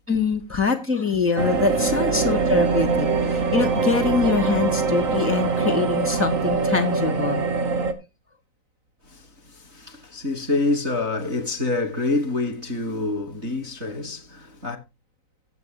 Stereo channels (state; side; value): late; left; 3.9 ms